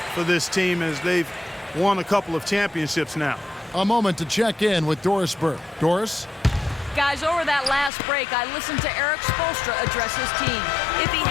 for this team as they've won a couple of championships now. A moment to check in with Doris Burke. Doris? Guys, over that last break, I listened to Eric Spoelstra address his team. If he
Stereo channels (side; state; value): right; drops out; at 7.9 s